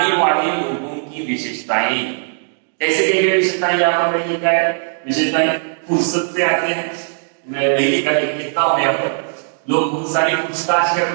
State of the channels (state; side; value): silent; left; digital silence